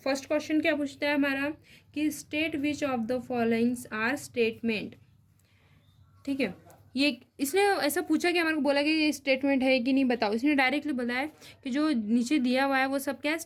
क्वेश्चन क्या पूछता है हमारा कि state which of the followings are statement. ठीक है, ये इसने ऐसा पूछा कि हमारे को बोला कि ये स्टेटमेंट है कि नहीं बताओ। इसने डायरेक्टली बताया कि जो नीचे दिया हुआ है वो सब क्या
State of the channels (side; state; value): both; identical; correlation 1.00